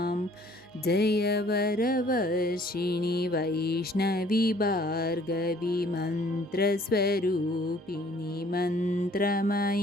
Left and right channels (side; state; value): both; normal; correlation 0.57